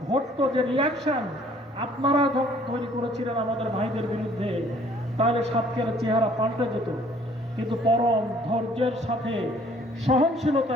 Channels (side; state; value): both; normal; correlation 0.58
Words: ঘটতো, যে রিয়াকশন আপনারা তৈরি করেছিলেন আমাদের ভাইদের বিরুদ্ধে, তাহলে সাতক্ষীরার চেহারা পাল্টে যেত। কিন্তু পরম ধৈর্যের সাথে,